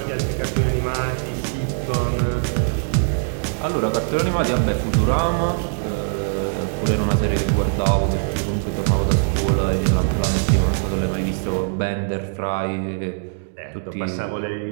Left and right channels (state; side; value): silent; left; 64 dB below the other